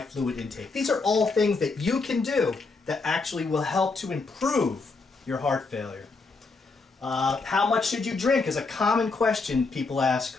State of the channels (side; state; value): right; quieter; 4.0 dB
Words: fluid intake. These are all things that you can do that actually will help to improve your heart failure. How much should you drink is a common question people ask